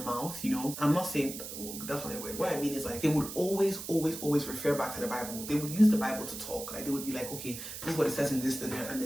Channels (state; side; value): noise; right; hiss, 9 dB below the sound